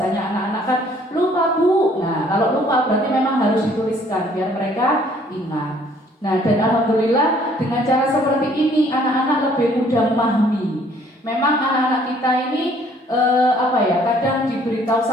anak-anak kan lupa Bu. Nah, kalau lupa berarti memang harus dituliskan biar mereka ingat. Nah, dan alhamdulillah dengan cara seperti ini anak-anak lebih mudah memahami. Memang anak-anak kita ini kadang diberitahu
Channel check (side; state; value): both; normal; correlation 0.60